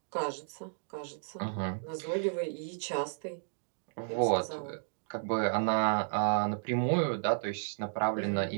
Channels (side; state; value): left; silent; digital silence